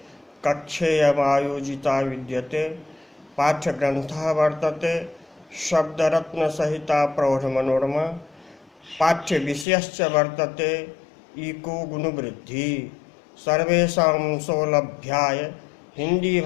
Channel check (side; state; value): right; drops out; at 9.7 s